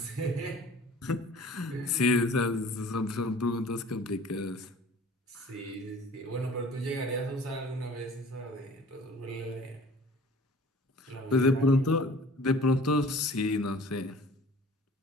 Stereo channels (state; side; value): normal; both; correlation 0.47